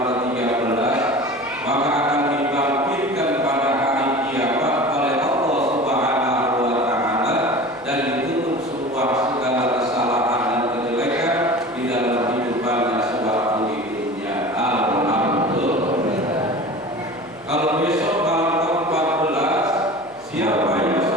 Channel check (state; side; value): noise; left; hum, 27 dB below the sound